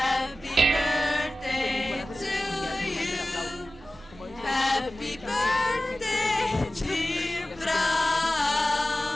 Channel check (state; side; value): normal; both; correlation 0.96